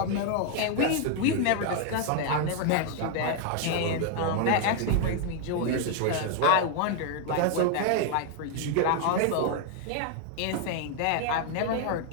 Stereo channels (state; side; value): different; both; correlation 0.00